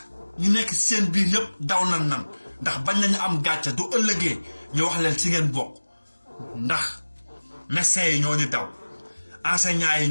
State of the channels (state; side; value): inverted; both; correlation -1.00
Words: ñu nekk seen biir yëpp daw nan ndax bañ nañu am gàcce du ëllëgee ñu wax leen si ngeen bokk ndax médecins yi ñoo ñu daw enseignants yi